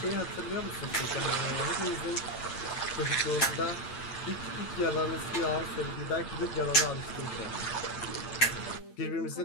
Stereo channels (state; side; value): late; right; 8.9 ms